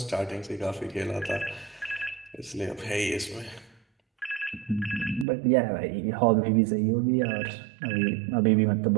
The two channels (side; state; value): left; drops out; at 5.2 s